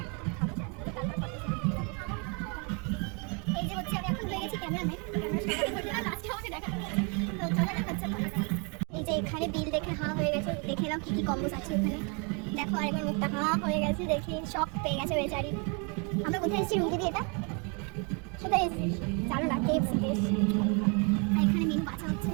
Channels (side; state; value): left; quieter; 34.4 dB